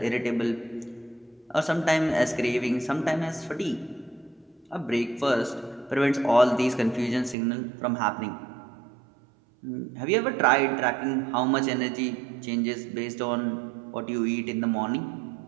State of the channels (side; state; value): left; drops out; at 7.4 s